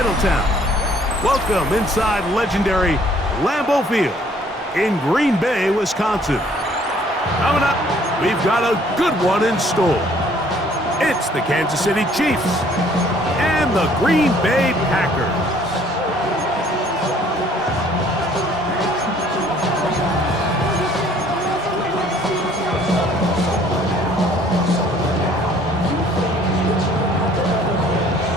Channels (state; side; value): normal; both; correlation 0.59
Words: Welcome inside legendary Lambeau Field in Green Bay, Wisconsin. Coming up, we've got a good one in store. It's the Kansas City Chiefs and the Green Bay Packers.